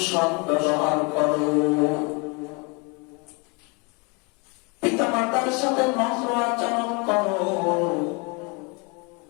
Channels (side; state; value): right; quieter; 31.2 dB